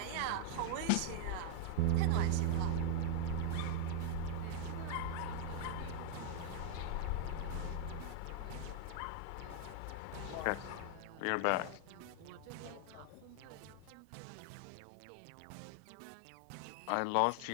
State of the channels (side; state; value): both; different; correlation -0.01